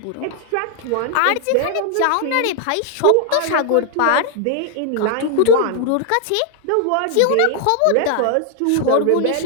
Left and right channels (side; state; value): both; different; correlation 0.00